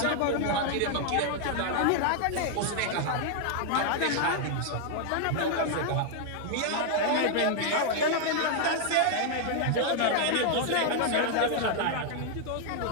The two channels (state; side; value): different; both; correlation 0.00